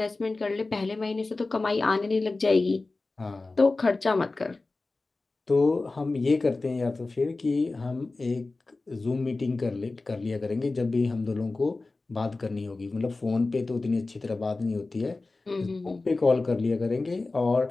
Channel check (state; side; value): quieter; right; 3.4 dB